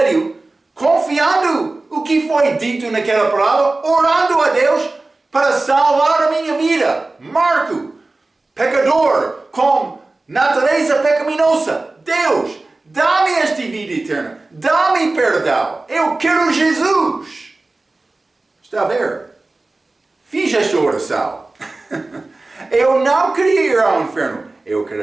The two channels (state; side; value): quieter; left; 3.2 dB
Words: confiando o que foi dito naquela palavra, orando a Deus para salvar a minha vida. Marco, pecador, com natureza pecaminosa. Deus dá-me esta vida eterna, dá-me perdão, eu quero Jesus. Está a ver? Fiz esta oração. Eu não queria ir ao inferno, eu